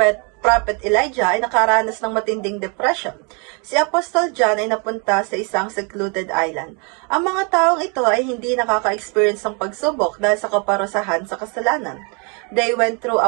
Prophet Elijah ay nakaranas ng matinding depression. Si Apostle John ay napunta sa isang secluded island. Ang mga taong ito ay hindi nakaka-experience ng pagsubok dahil sa kaparusahan sa kasalanan. They went through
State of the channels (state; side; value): quieter; left; 34.7 dB